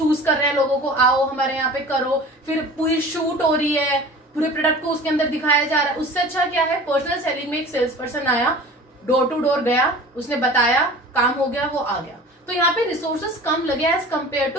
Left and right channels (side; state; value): both; normal; correlation 0.40